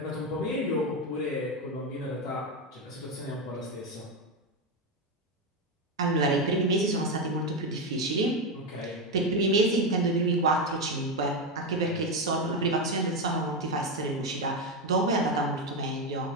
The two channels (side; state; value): both; normal; correlation 0.10